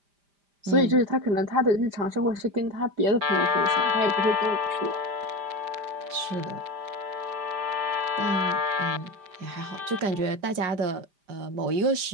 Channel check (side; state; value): left; late; 5.0 ms